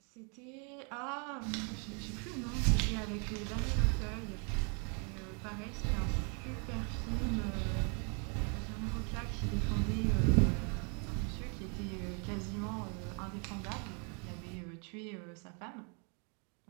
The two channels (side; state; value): left; quieter; 37.3 dB